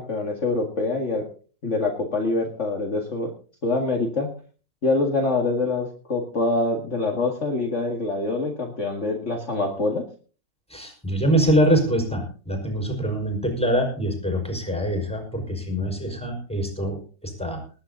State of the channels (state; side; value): normal; both; correlation 0.24